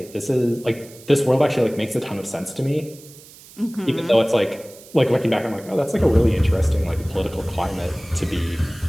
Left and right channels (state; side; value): noise; right; hiss, 21 dB below the sound